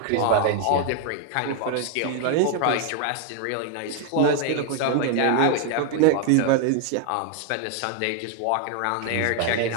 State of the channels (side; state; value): both; different; correlation 0.00